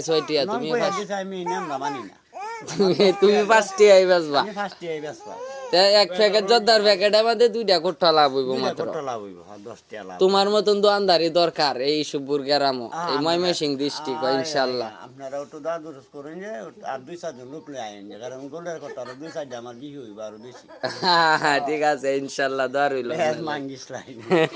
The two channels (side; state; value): both; identical; correlation 1.00